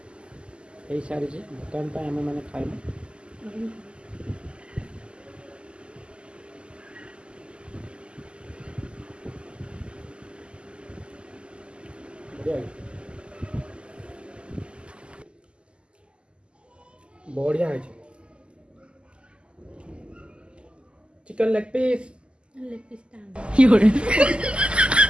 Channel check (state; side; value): late; left; 0.052 ms